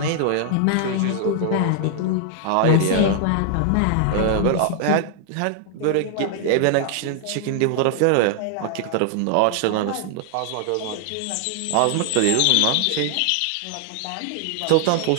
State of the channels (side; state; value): both; different; correlation 0.00